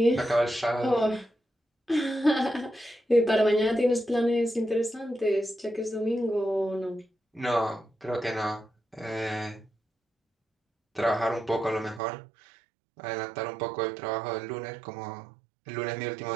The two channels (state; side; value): drops out; left; at 12.0 s